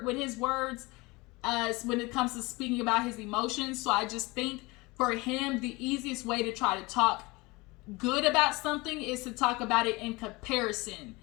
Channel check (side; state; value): right; quieter; 23.9 dB